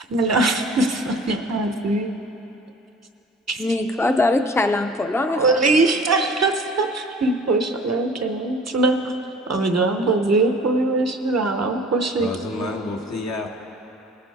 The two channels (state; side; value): normal; both; correlation 0.46